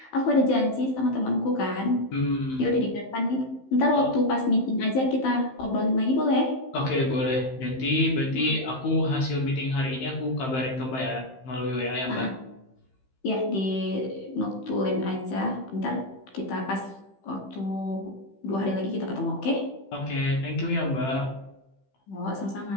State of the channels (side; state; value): right; late; 15 ms